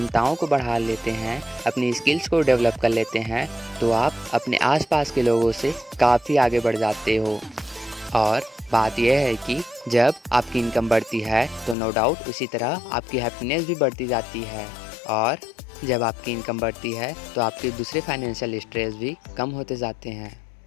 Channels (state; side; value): drops out; right; at 11.8 s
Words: को बढ़ा लेते हैं, अपनी स्किल्स को डेवलप कर लेते हैं, तो आप अपने आसपास के लोगों से काफ़ी आगे बढ़ जाते हो। और बात यह है कि जब आपकी इनकम बढ़ती है तो नो डाउट उसी तरह आपकी हैप्पीनेस भी बढ़ती जाती है, और जब आपकी इनकम बढ़ती है तो आपके दूसरे फाइनेंशियल स्ट्रेस भी कम होते जाते हैं।